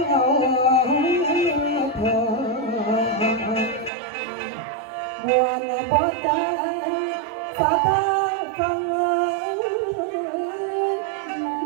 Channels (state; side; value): drops out; left; at 3.9 s